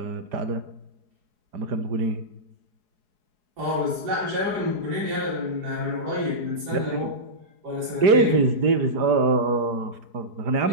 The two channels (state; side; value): late; left; 4.7 ms